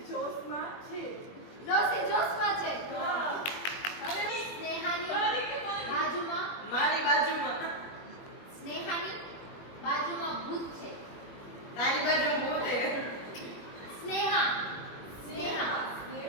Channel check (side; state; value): right; late; 21 ms